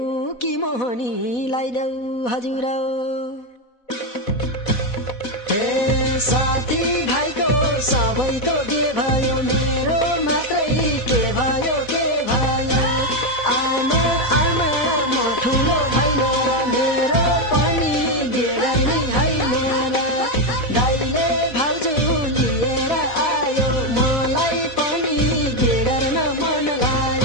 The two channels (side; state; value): right; late; 4.1 ms